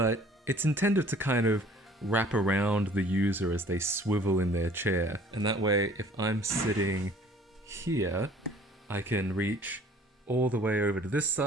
it's intended to kind of wrap around the user as they swivel in their chair. And that way, if I'm sitting here, I can reach all the way over to this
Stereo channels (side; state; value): both; normal; correlation 0.53